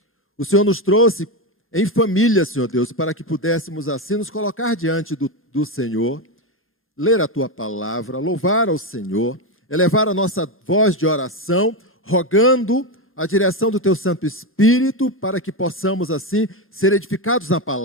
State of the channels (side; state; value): both; normal; correlation 0.12